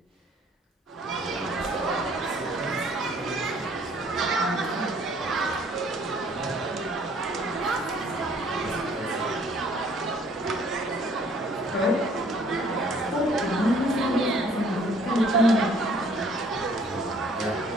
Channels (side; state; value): both; normal; correlation 0.59